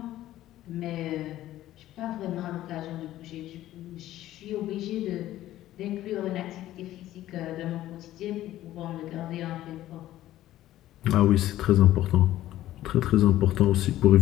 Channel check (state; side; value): quieter; right; 14.2 dB